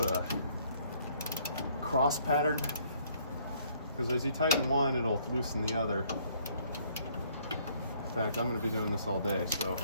a cross pattern, because as you tighten one, it'll loosen the other. In fact, I'm going to be doing this all day, so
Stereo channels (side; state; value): both; inverted; correlation -0.64